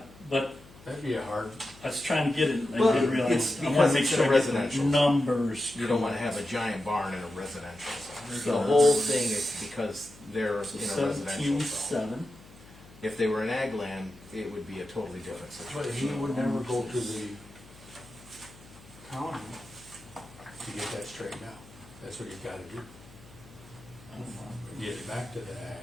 but That'd be a hard, I was trying to get it, I Well, didn't realize, it's I wanna because make it's sure in a I get the residential. numbers. You don't wanna have a giant barn in a residential zone. So The whole thing is because they're So in a residential 17.7. zone. If they were in ag land, it would be a totally different but he situation. would never go to the county to get that straightened out. That's what he's gotta do, get it back to the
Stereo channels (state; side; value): noise; left; hum, 22 dB below the sound